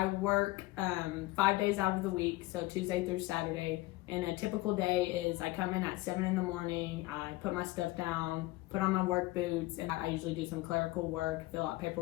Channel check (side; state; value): right; quieter; 19.7 dB